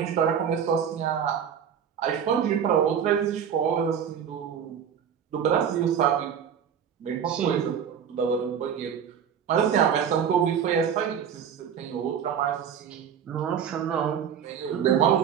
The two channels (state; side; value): quieter; left; 8.1 dB